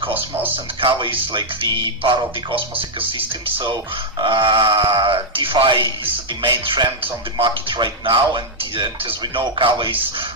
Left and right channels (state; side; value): normal; both; correlation -0.02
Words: Cosmos, and Kava is the part of the Cosmos ecosystem. So DeFi is the main trend on the market right now, and as we know, Kava is